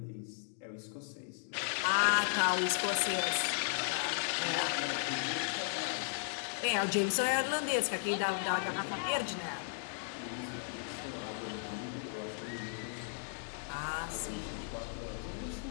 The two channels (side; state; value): right; silent; digital silence